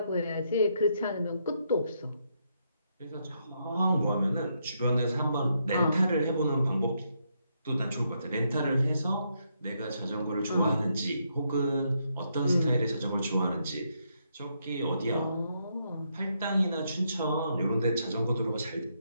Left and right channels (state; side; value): inverted; both; correlation -0.77